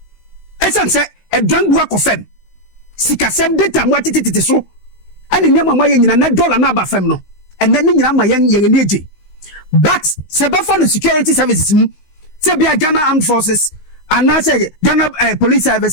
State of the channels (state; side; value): late; right; 16 ms